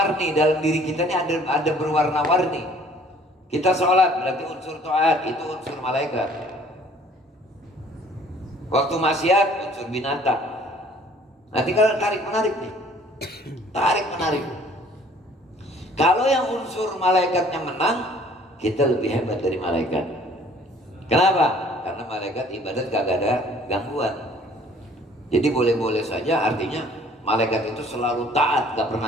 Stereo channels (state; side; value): normal; both; correlation 0.56